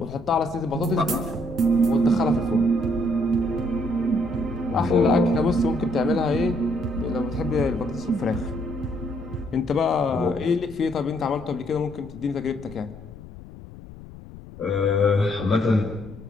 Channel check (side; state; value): left; noise; rumble, 17 dB below the sound